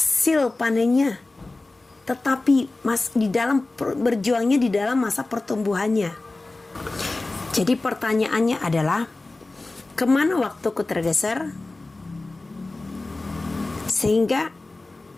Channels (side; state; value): right; quieter; 3.1 dB